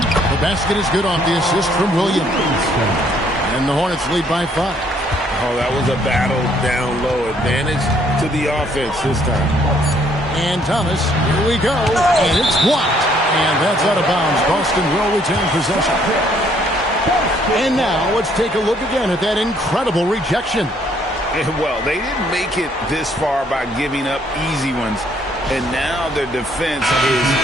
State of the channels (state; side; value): normal; both; correlation 0.66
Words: basket is good off the assist from Williams. And the Hornets lead by 5. Oh, that was a battle down low. Advantage to the offense this time. And Thomas, here we go. And it's blocked. And that's out of bounds. Boston will retain possession. And now let's take a look again at that incredible rejection. Well, they didn't make it this far by giving up easy ones. And now their defense is